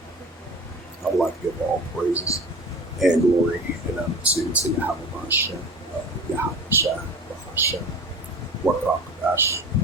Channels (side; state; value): both; normal; correlation 0.36